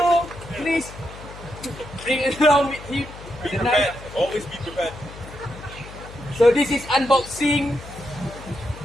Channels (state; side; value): noise; left; hum, 15 dB below the sound